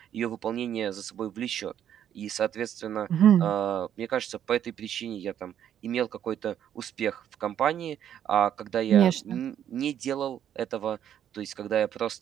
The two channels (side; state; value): left; quieter; 9.9 dB